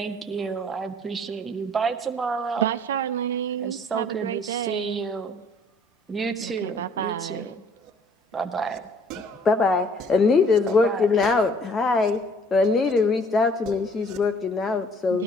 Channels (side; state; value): both; normal; correlation 0.57